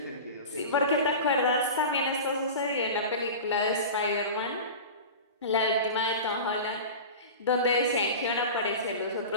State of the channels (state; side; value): inverted; both; correlation -0.31